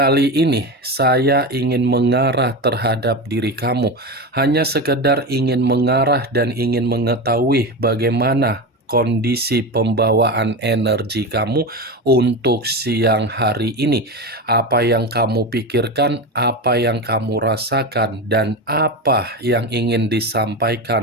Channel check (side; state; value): both; normal; correlation 0.21